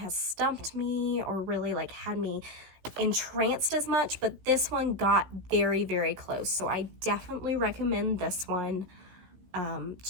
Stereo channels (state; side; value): late; left; 16 ms